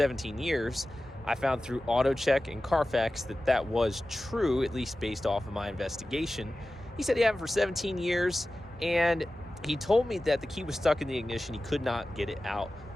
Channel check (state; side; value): normal; both; correlation 0.95